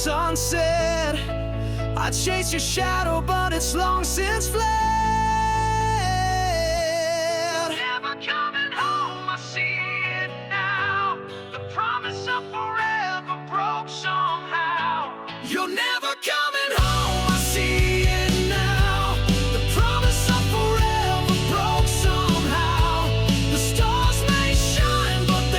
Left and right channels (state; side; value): identical; both; correlation 1.00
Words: unsaid. I chase your shadow, but it's long since fled. Never coming home, I see it now. The promise of forever broke somehow. You're never coming home, I see it now. The promise of forever broke somehow. The stars may shine, but